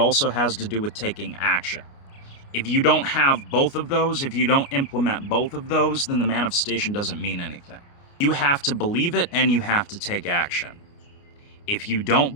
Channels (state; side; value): late; right; 29 ms